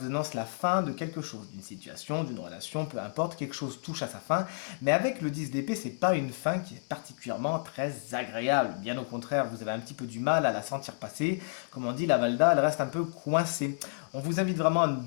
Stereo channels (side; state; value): right; silent; digital silence